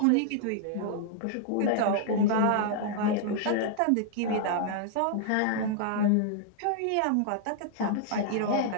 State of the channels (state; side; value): different; both; correlation -0.01